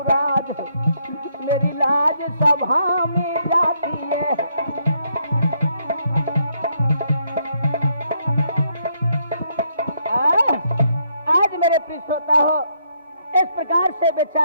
मेरी लाज सभा में जाती है। आज मेरे प्रिय श्रोता हो, इस प्रकार से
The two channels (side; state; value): both; inverted; correlation -0.74